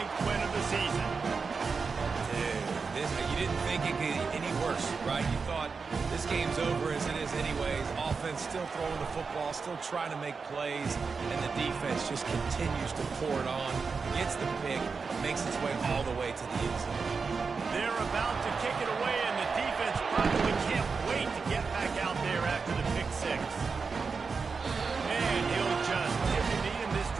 win of the season. You didn't think it could get any worse, right? You thought this game's over as it is anyways. Offense still throwing the football, still trying to make plays, and the defense just continues to pour it on, gets the pick, makes its way all the way to the end zone. They're about to kick it away, and the defense probably can't wait to get back out there after the pick six. And he'll just tip the knee, and this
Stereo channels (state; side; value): quieter; left; 4.9 dB